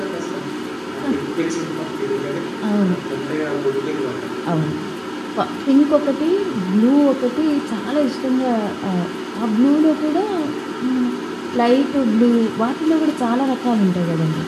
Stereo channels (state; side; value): identical; both; correlation 1.00